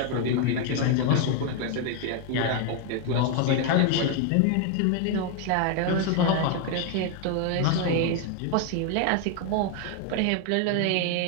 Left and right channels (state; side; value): different; both; correlation 0.01